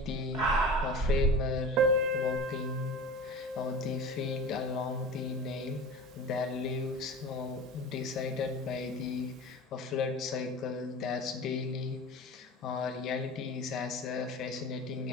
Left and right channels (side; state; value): both; normal; correlation 0.34